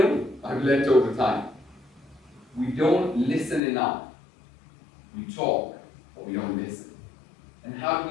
I've learned over time. We don't listen enough. We talk, but we don't listen. And how do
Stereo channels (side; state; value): right; drops out; at 3.6 s